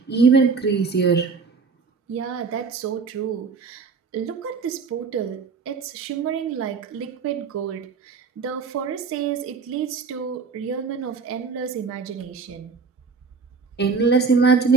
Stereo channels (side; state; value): left; quieter; 5.1 dB